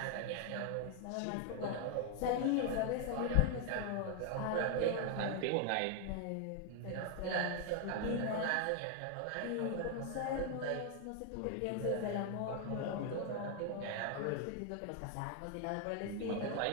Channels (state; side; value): different; both; correlation 0.00